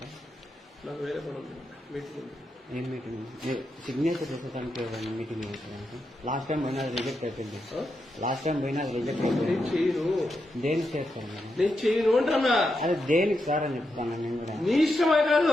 నాకు వేరే పని ఉంది, మీటింగ్ ఉంది. ఏం మీటింగ్? సిగ్నేచర్ చేసేదానికి మీటింగ్ చేసేదానికి లాస్ట్ టైం పోయినా రిజెక్ట్ అయిపోయింది. లాస్ట్ టైం పోయినా రిజెక్ట్ అయిపోయింది. నేను చేయను. దేనికి చేస్తాను నేను చేయను అంటున్నా. అదే దేనికి సార్ అని చెప్తాను నేను కూడా. నీ ఇష్టమే కాదు,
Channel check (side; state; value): both; normal; correlation 0.85